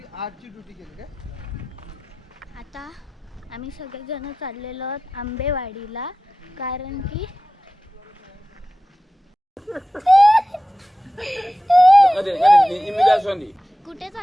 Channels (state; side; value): normal; both; correlation 0.94